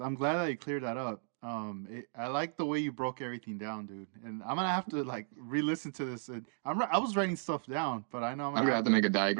I'm glad that you cleared that up. I like the way you broke everything down, dude. And I'm gonna have to like re-listen to this. And I was writing stuff down, but I know I'm I'm gonna gonna have have to to. make a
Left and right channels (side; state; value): left; silent; digital silence